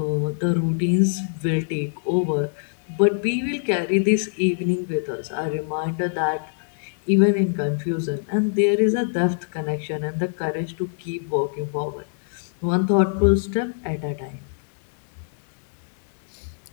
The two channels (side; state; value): right; silent; digital silence